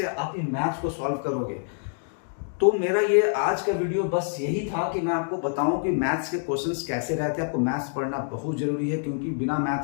आप ये मैथ्स को सॉल्व करोगे। तो मेरा ये आज का वीडियो बस यही था कि मैं आपको बताऊं कि मैथ्स के क्वेश्चंस कैसे रहते हैं। आपको मैथ्स पढ़ना बहुत जरूरी है, क्योंकि बिना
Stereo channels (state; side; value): silent; right; digital silence